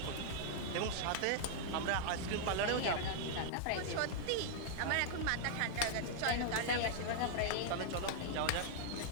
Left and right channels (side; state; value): both; different; correlation 0.00